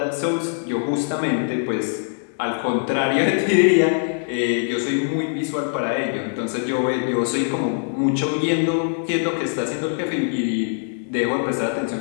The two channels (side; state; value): right; silent; digital silence